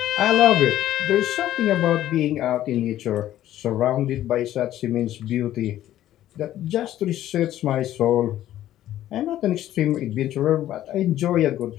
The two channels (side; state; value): right; quieter; 13.0 dB